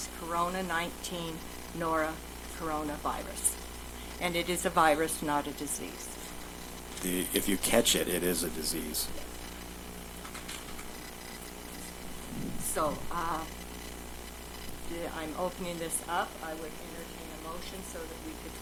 Corona-19 coronavirus. And it is a virus, not a disease. If you catch it, it is a disease. So, I'm opening this up. I would entertain a motion so that we could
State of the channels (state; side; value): identical; both; correlation 1.00